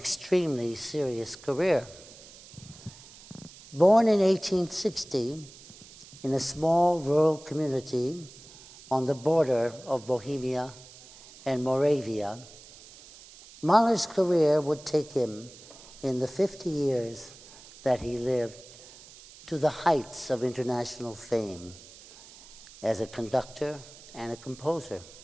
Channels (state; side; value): noise; right; hiss, 20 dB below the sound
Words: serious career. Born in 1860 in a small rural community on the border of Bohemia and Moravia, Mahler's career would take him, in the 50 years that he lived, to the heights of international fame as a conductor and a composer.